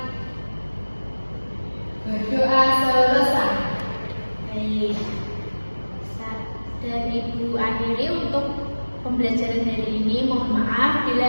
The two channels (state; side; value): inverted; both; correlation -1.00